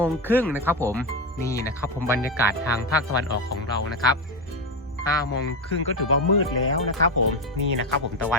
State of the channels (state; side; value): normal; both; correlation 0.13